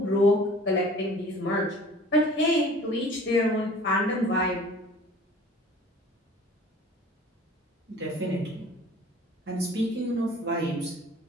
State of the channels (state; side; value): normal; both; correlation 0.47